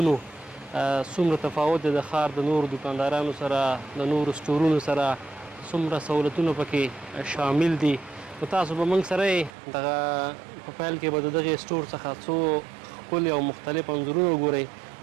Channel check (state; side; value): drops out; left; at 9.5 s